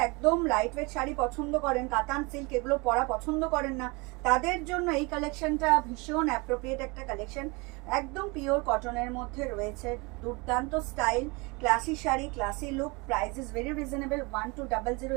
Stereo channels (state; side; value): quieter; left; 27.3 dB